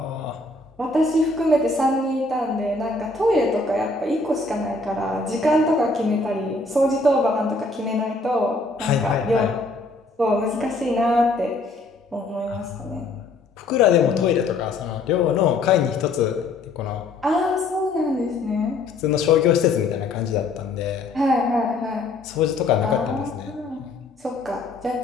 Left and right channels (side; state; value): right; quieter; 3.3 dB